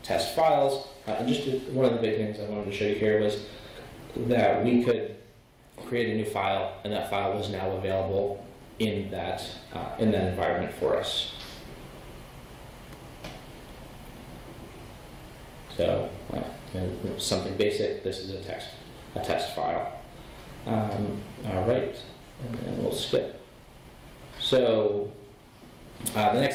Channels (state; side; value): identical; both; correlation 1.00